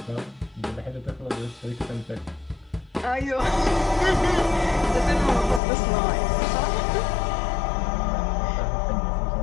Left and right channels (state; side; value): drops out; right; at 5.6 s